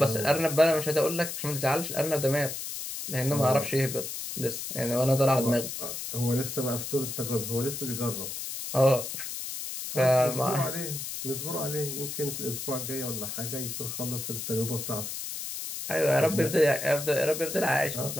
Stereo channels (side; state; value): left; noise; hiss, 6 dB below the sound